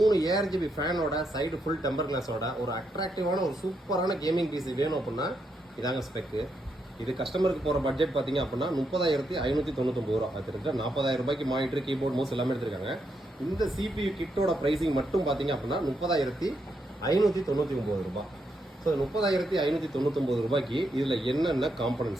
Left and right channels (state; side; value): normal; both; correlation 0.80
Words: ARGB ஃபேனோட சைடு ஃபுல் டெம்பர் கிளாஸோட ஒரு அட்ராக்டிவான ஒரு சூப்பரான கேமிங் பிசி வேணும் அப்படின்னா இதாங்க ஸ்பெக்கு. இது கஸ்டமருக்கு போகிற பட்ஜெட் பார்த்தீங்க அப்படின்னா 30,599 ரூபா. அது இருக்கிற 40,000 ரூபாய்க்கு மானிட்டர் கீபோர்ட் மவுஸ் எல்லாமே எடுத்திருக்காங்க. இந்த CPU கிட்டோட ப்ரைஸிங் மட்டும் பார்த்தீங்க அப்படின்னா 30,599 ரூபாய். ஸோ 30,599 ரூபாய்க்கு இதில் என்னென்ன